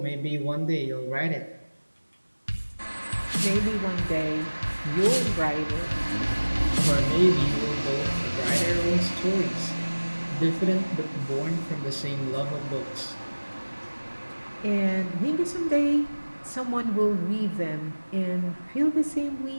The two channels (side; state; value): both; inverted; correlation -1.00